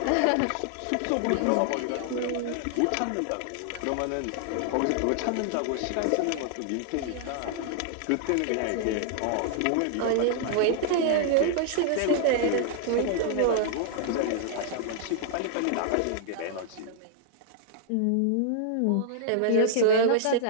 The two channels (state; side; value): different; both; correlation -0.01